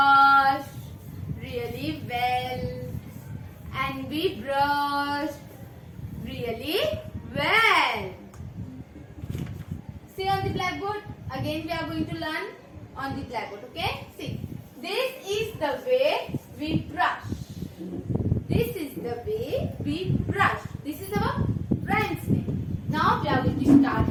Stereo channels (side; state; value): both; identical; correlation 1.00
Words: really well. And we brush really well. See on the blackboard. Again we are going to learn on the blackboard. Okay? See. This is the way we brush. This is the way we brush. This is our friend's name. Now we are going to start